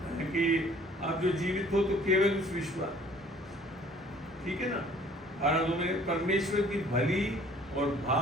आप जो जीवित हो तो केवल उस विश्वास, ठीक है ना, और में परमेश्वर की भली और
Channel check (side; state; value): both; normal; correlation 0.54